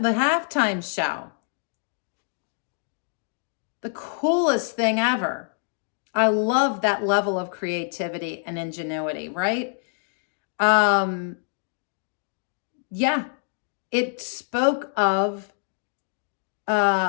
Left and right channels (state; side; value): silent; right; digital silence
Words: show. The coolest thing ever. I love that level of creativity and ingenuity, right? Yeah, it spoke of,